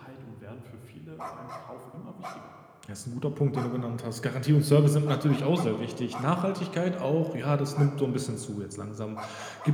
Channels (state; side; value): identical; both; correlation 1.00